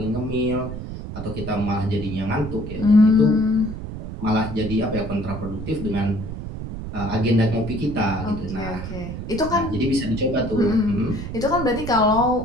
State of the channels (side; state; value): right; noise; rumble, 8 dB below the sound